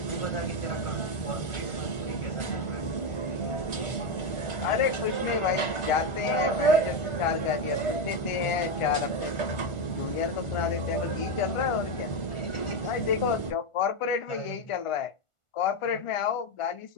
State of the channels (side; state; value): right; late; 1.5 ms